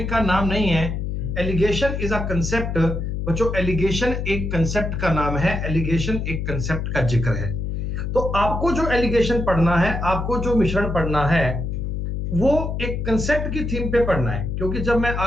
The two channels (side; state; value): left; noise; hum, 3 dB below the sound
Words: का नाम नहीं है, एलिगेशन इज अ कंसेप्ट। बच्चों एलिगेशन एक कंसेप्ट का नाम है, एलिगेशन एक कंसेप्ट का जिक्र है। तो आपको जो एलिगेशन पढ़ना है, आपको जो मिश्रण पढ़ना है, वो एक कंसेप्ट की थीम पे पढ़ना है, क्योंकि जब मैं